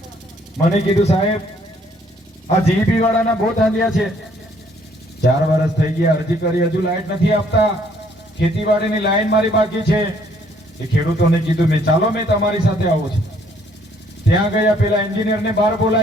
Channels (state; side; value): normal; both; correlation 0.64